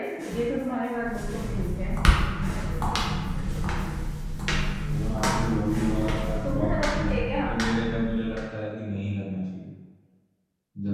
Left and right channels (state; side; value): identical; both; correlation 1.00